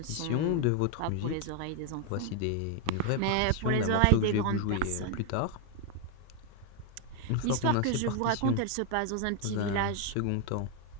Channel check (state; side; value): different; both; correlation 0.00